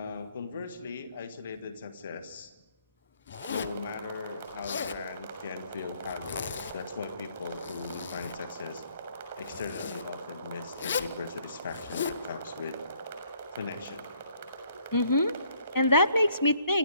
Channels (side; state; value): both; inverted; correlation -0.64